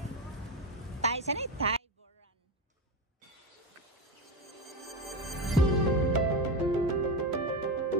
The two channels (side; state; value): both; normal; correlation 0.17